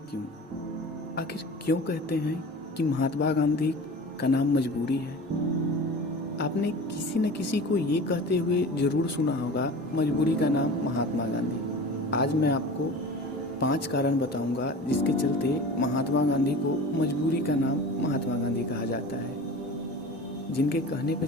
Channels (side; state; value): both; normal; correlation 0.36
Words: क्यों। आखिर क्यों कहते हैं कि महात्मा गांधी का नाम मजबूरी है। आपने किसी न किसी को ये कहते हुए ज़रूर सुना होगा मजबूरी का नाम महात्मा गांधी। आज मैं आपको 5 कारण बताऊंगा जिसके चलते महात्मा गांधी को मजबूरी का नाम महात्मा गांधी कहा जाता है, जिनके कहने पर